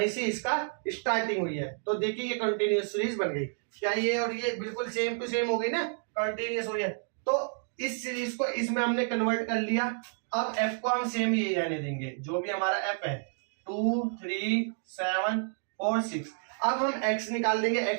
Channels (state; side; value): silent; left; 58 dB below the other